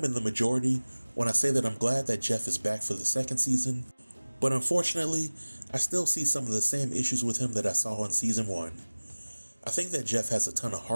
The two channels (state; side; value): inverted; both; correlation -1.00